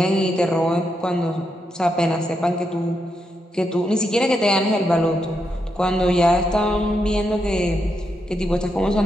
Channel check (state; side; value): normal; both; correlation 0.82